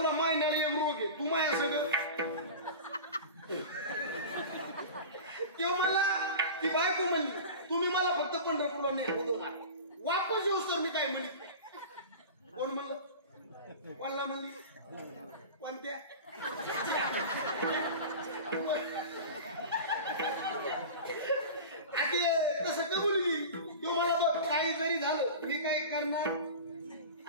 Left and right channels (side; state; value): both; inverted; correlation -0.32